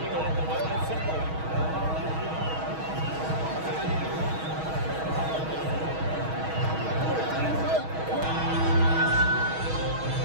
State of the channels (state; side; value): late; left; 6.3 ms